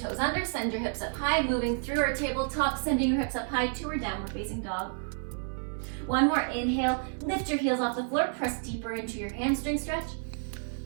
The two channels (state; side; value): silent; left; 56 dB below the other